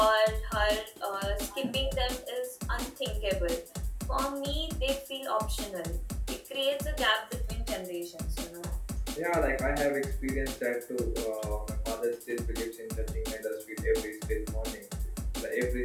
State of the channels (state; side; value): identical; both; correlation 1.00